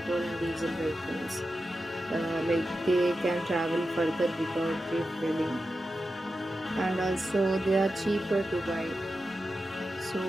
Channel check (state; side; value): normal; both; correlation 0.91